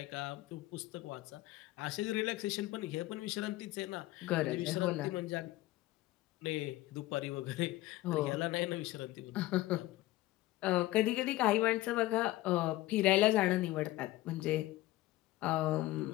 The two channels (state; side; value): quieter; right; 17.2 dB